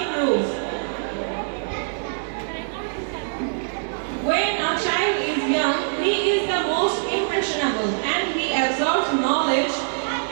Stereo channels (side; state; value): left; silent; digital silence